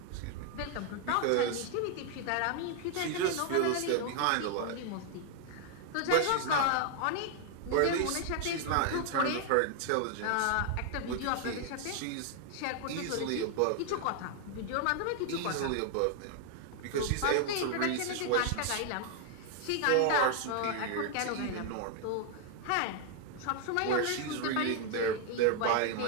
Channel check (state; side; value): different; both; correlation 0.00